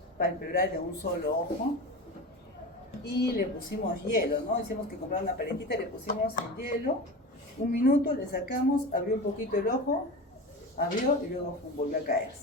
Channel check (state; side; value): normal; both; correlation 0.28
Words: palpebral de un solo ojo y le pusimos hielo, ¿no? Hicimos que comprar una paletita, le pusimos el hielo, 1 minuto, le sacamos, abrió un poquito el ojo, abrió y luego volvió a